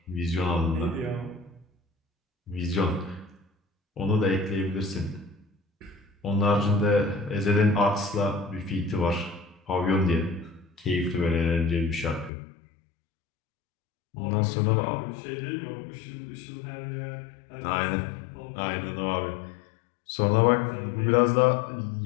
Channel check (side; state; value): right; drops out; at 12.3 s